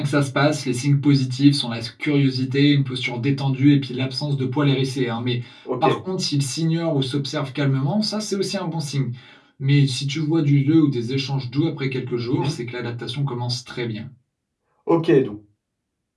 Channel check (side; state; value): both; identical; correlation 1.00